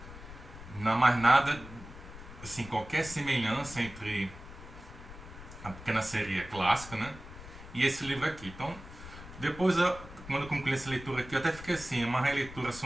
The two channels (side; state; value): left; noise; rumble, 15 dB below the sound